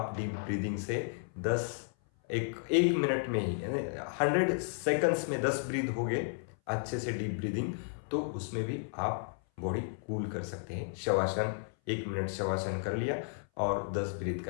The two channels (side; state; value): right; silent; 56 dB below the other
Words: डीप ब्रीदिंग से 1 मिनट में ही, 100 सेकंड्स में 10 ब्रीथ हो गए अच्छे से डीप ब्रीदिंग, तो उसमें भी आप बॉडी कूल कर सकते हैं। शवासन 1 मिनट शवासन कर लिया और 10 ब्रीथ